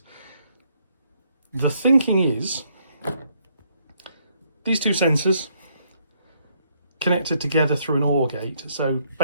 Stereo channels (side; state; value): both; inverted; correlation -0.71